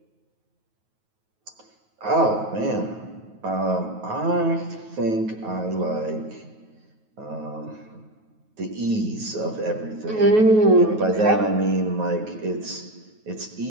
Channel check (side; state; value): left; late; 9.3 ms